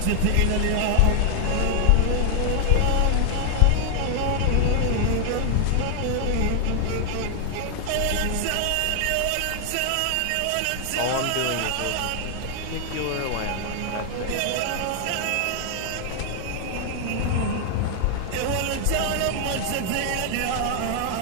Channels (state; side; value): different; both; correlation 0.00